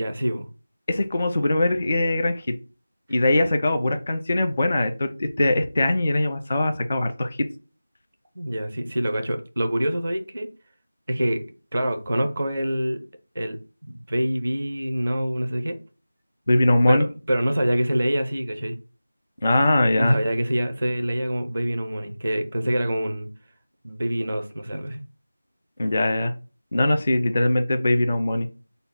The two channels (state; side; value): inverted; both; correlation -0.95